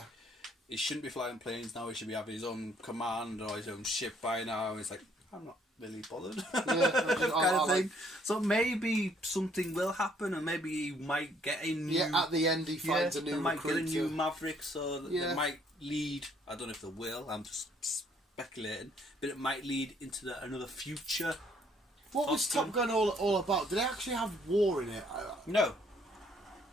he shouldn't be flying planes now. He should be having his own command or his own ship by now. And it's like, I'm not really bothered. Kind of thing. So maybe something will happen, and maybe he might get a new... Yeah, at the end he finds a new might recruiter. Get a new Maverick, so they might lead... I don't know if they will, I'm just speculating. But it might lead into another future... What was Top Gun all about? Did they actually have war in it? No.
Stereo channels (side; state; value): both; normal; correlation 0.65